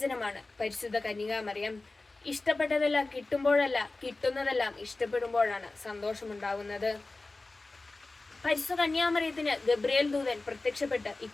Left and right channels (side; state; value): right; quieter; 3.3 dB